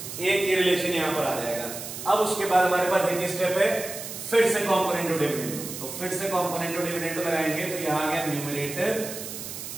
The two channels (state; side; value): noise; right; hiss, 9 dB below the sound